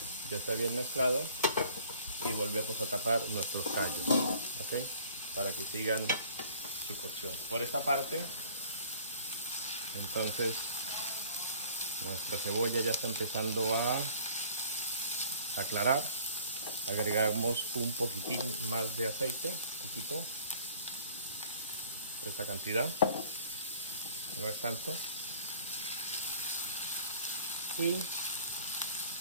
Ya está bien mezclado y volvemos a tapar nuestros callos. ¿Ok? Para que sigan su cocción. Por esta parte, entonces, nuestra cebolla ya está empezando a aclarar. Agregamos un poquitín más de aceite, un poquito. Esta cantidad, no es tanto. Y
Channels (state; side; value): inverted; both; correlation -0.53